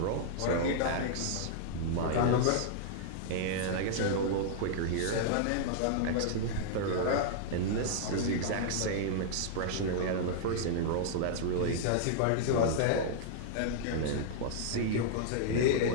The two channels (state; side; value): different; both; correlation -0.01